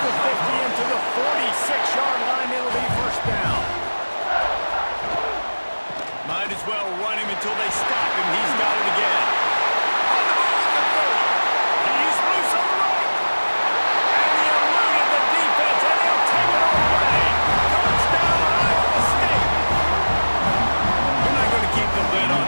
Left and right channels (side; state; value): both; inverted; correlation -1.00